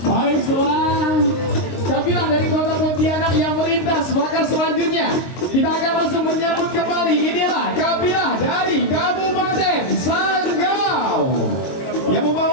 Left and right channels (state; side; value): late; right; 22 ms